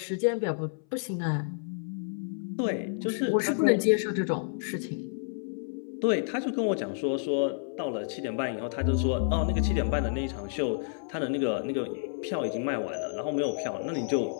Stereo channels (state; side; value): silent; right; 58 dB below the other